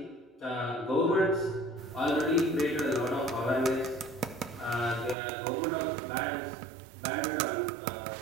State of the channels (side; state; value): left; drops out; at 5.2 s